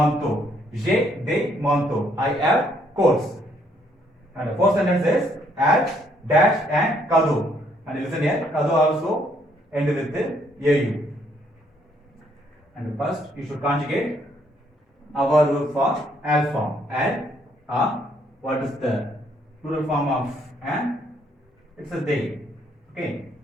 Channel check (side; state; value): both; normal; correlation 0.69